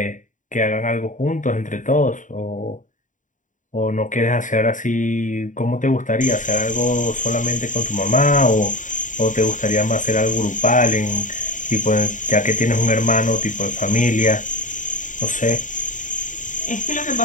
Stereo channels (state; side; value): late; right; 0.37 ms